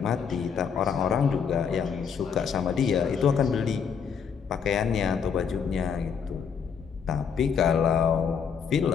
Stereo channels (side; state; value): right; quieter; 6.8 dB